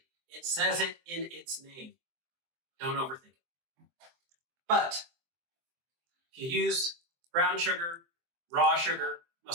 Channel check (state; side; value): late; left; 23 ms